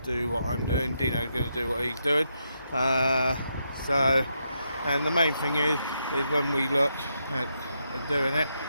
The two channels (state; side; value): inverted; both; correlation -0.81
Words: do what I'm doing. Dino's going to do what he's doing. And the main thing is when we look at doing it,